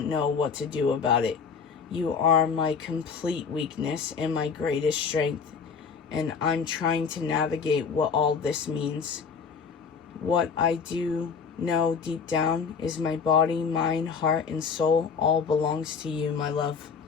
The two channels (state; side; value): quieter; right; 5.8 dB